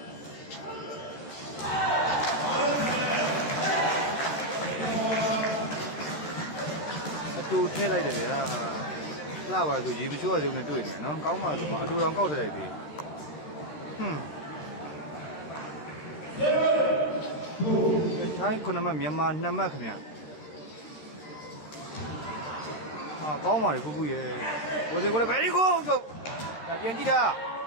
အတူထည့်လိုက်တယ်ဗျာလှပါဆိုရေမချိုးရသေးဘူးနဲ့တွေ့နေနော်ကောင်းပါဆိုမှအတူတောင်ကောက်ထည့်လိုက်သေးထိုင်း9မှတ်မြန်မာ2မှတ်ခင်ဗျာကောင်းပါလေဖူးဖူးရဲ့ကိုစင်ကိုလည်း very good ဆိုဒါပြန်ကြည့်တာ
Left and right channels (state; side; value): late; right; 13 ms